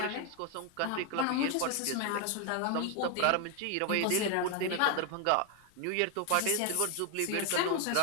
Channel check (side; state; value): both; different; correlation 0.01